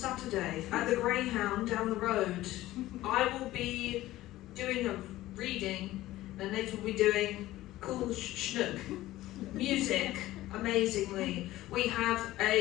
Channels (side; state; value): right; quieter; 16.1 dB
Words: at the Greyhound down the road. I will be doing a reading, and Nate will be doing cool schnook. Music, amazingly. We have